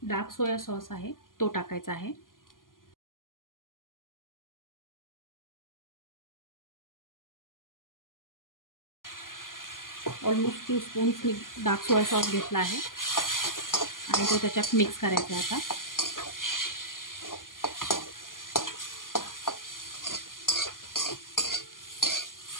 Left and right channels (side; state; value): right; late; 0.91 ms